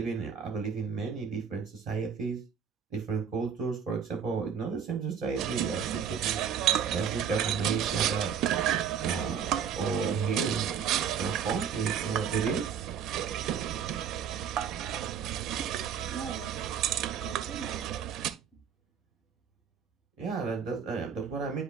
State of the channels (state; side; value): quieter; left; 7.5 dB